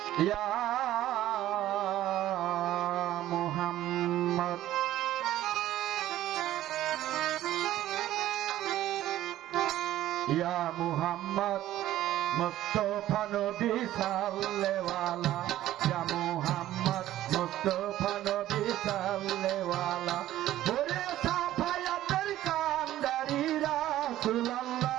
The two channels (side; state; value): left; quieter; 13.8 dB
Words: ইয়া মুহাম্মদ ইয়া মুহাম্মদ মুস্তাফা নবী সাল্লেওয়ালা ইয়া মুহাম্মদ মুস্তাফা নবী সাল্লেওয়ালা ওরে সাফায়াতের কান্ডারি রাসূলুল্লাহ